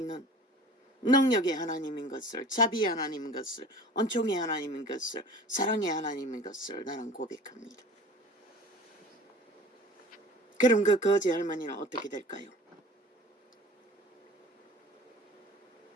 능력의 하나님인 것을, 자비의 하나님인 것을, 은총의 하나님인 것을, 사랑의 하나님인 것을 나는 고백합니다. 그럼 그 거지 할머니는 어떻게 될까요?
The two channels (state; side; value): normal; both; correlation 0.42